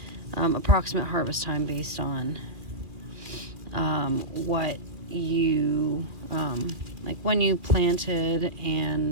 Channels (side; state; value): left; late; 2.4 ms